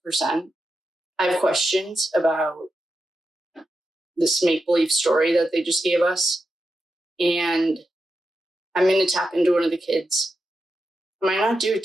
I have questions about this make-believe story that they just gave us. And I'm going to tap into one of the kids. I might not do it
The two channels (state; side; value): normal; both; correlation 0.89